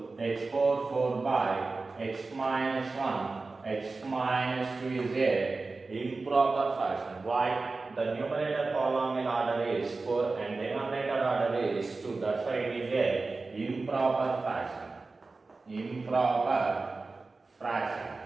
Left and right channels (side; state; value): left; quieter; 3.7 dB